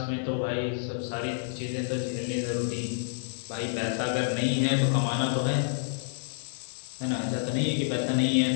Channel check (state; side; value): silent; right; 58 dB below the other